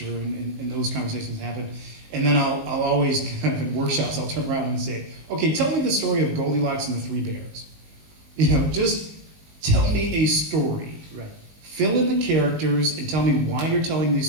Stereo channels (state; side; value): late; left; 19 ms